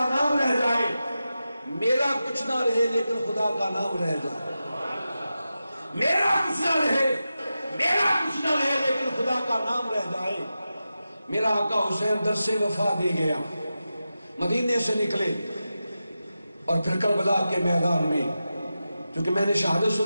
نام رہ جائے، میرا کچھ نہ رہے لیکن خدا کا نام رہ جائے۔ میرا کچھ نہ رہے لیکن خدا کا نام رہ جائے۔ میرا آقا حسین درس وفا دے گیا، مدینے سے نکلے اور پھر کربلا کے میدان میں، چونکہ میں نے شہادت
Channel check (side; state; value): both; inverted; correlation -0.92